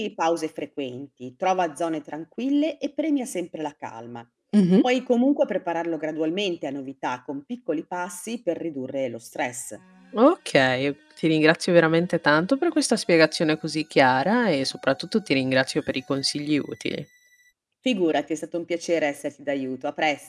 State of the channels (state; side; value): identical; both; correlation 1.00